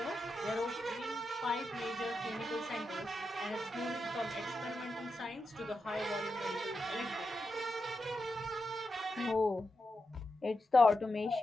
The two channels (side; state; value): both; normal; correlation 0.88